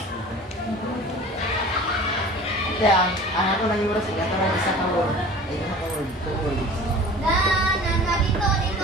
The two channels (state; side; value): normal; both; correlation 0.42